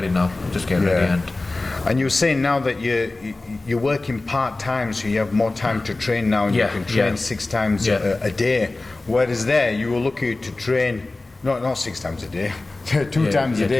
now, just getting ready. And you were saying now that you're working part-time, so you have more time to train now, and you can train 6 times a day. Whereas there, you were lucky to train, not 6 times a day, 2 times a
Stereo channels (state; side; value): quieter; right; 3.1 dB